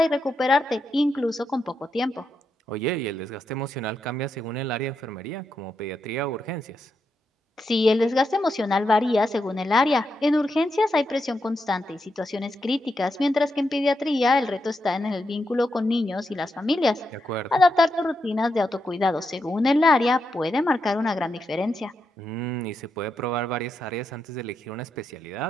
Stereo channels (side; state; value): both; normal; correlation 0.84